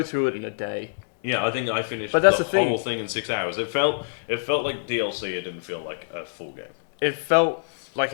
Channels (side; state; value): right; quieter; 37.7 dB